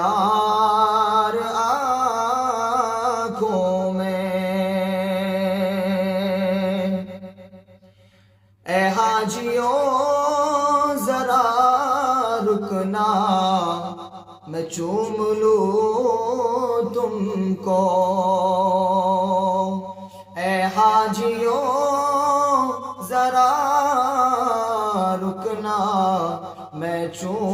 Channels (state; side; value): identical; both; correlation 1.00